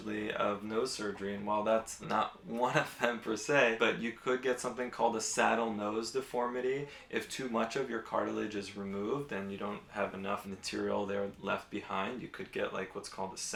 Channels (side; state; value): both; identical; correlation 1.00